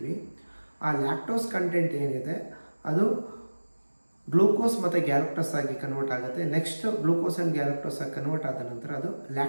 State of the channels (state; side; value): inverted; both; correlation -1.00